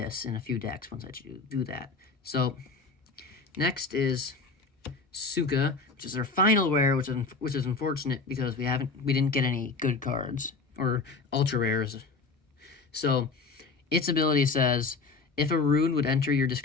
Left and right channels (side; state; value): right; quieter; 4.2 dB